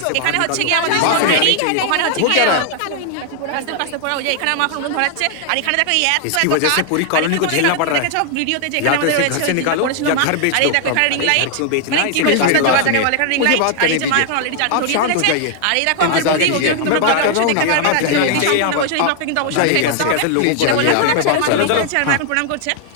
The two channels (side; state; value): both; different; correlation 0.00